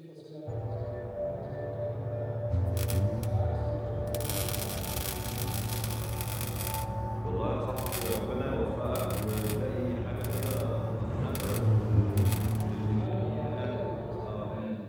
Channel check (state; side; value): identical; both; correlation 1.00